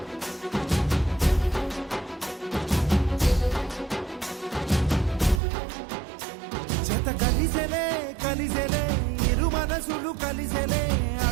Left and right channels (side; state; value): left; drops out; at 5.4 s